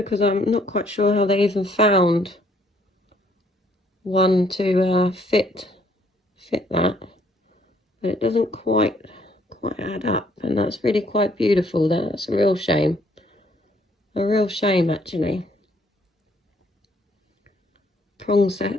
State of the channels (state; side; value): normal; both; correlation 0.65